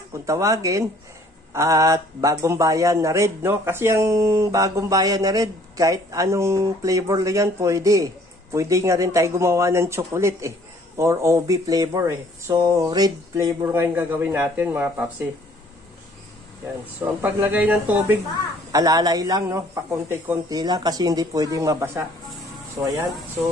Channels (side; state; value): both; normal; correlation 0.58